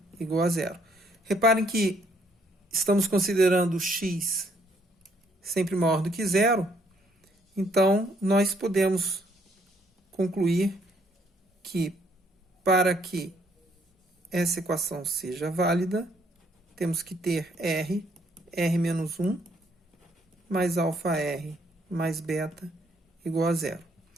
igual a zero. Reparem que estamos considerando x sempre maior do que zero, então nós podemos concluir que, para que essa equação seja válida, temos que ter r menos 1, mais alfa r, mais beta, igual a zero.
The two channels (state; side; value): normal; both; correlation 0.68